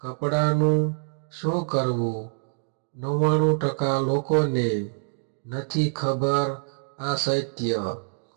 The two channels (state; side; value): silent; left; digital silence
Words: શું કરવું? 99% લોકોને નથી ખબર આ સત્ય.